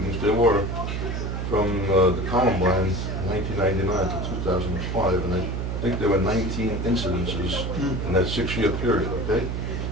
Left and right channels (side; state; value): right; noise; hum, 2 dB below the sound